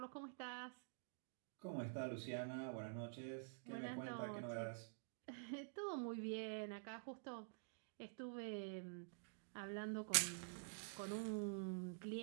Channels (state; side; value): silent; left; digital silence